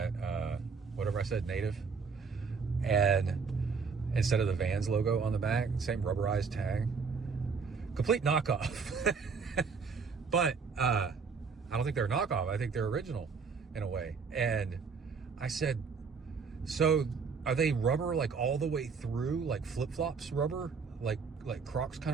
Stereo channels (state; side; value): quieter; left; 5.3 dB